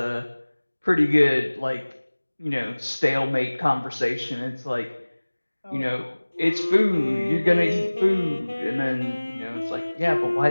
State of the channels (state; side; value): inverted; both; correlation -1.00